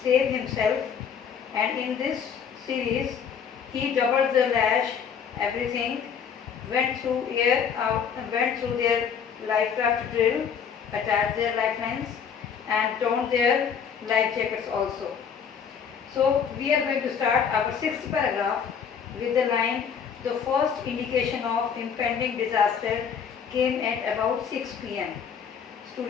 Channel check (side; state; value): right; quieter; 7.1 dB